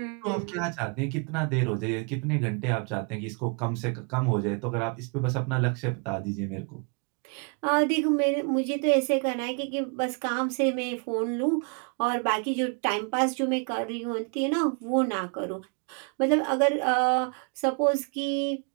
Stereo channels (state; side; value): quieter; left; 36.6 dB